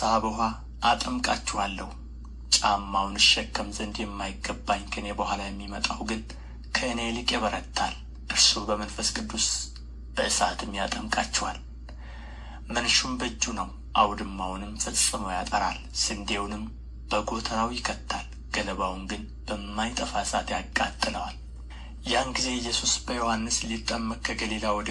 በውኃ አጠምቃችኋለሁ። ጫማውን እሸከም ዘንድ የማይገባኝ ከእኔ በኋላ የሚመጣው ግን ከእኔ ይልቅ ይበረታል። እርሱ በመንፈስ ቅዱስ በእሳትም ያጠምቃችኋል። መንሹም በእጁ ነው፣ አውድማውንም ፈጽሞ ያጠራል፣ ስንዴውንም በጎተራው ይከታል፣ ገለባውን ግን በማይጠፋ እሳት ያቃጥለዋል። ያን ጊዜ ኢየሱስ በዮሐንስ ሊጠመቅ ከገሊላ ወደ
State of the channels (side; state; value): both; identical; correlation 1.00